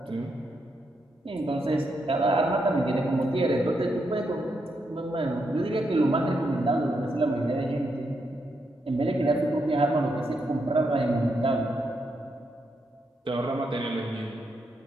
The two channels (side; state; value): both; normal; correlation 0.81